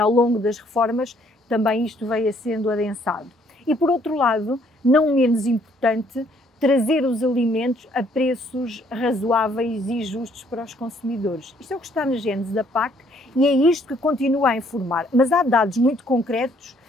longo das reformas também isto veio sendo adensado. E por outro lado, não menos importante, trazer os alimentos a preços razoáveis e justos para os consumidores. Isto é o que está na gênese da PAC e é isto que continua a informar. Mas há dados muito concretos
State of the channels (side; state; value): both; normal; correlation 0.65